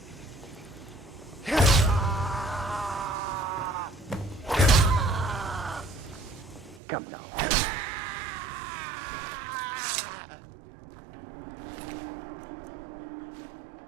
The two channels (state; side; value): drops out; left; at 6.8 s